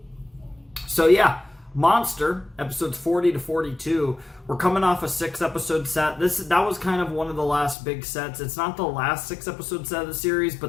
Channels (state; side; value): drops out; right; at 7.8 s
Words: So yeah. Monster, episodes 40 to 42. We're coming off a 6-episode set. That was kind of one of the last big sets. It's not the last 6-episode set of the series,